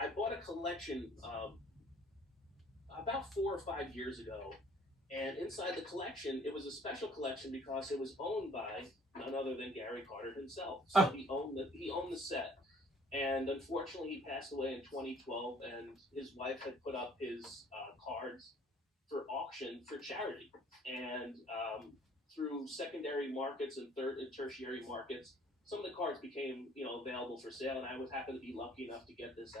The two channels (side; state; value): both; normal; correlation 0.56